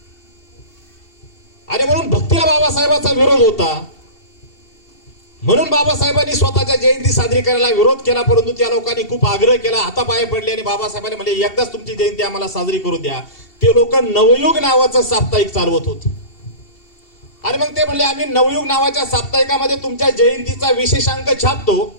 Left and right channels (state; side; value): late; right; 2.7 ms